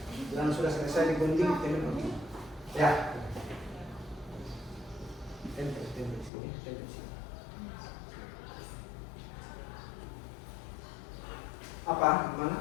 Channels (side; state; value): right; drops out; at 6.3 s